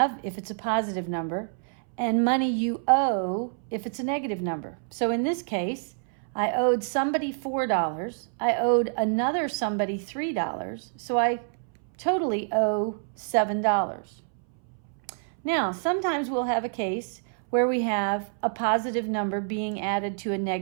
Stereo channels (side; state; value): left; silent; 60 dB below the other